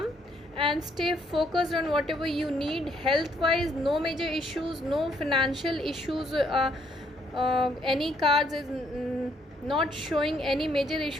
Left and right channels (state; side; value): normal; both; correlation 0.70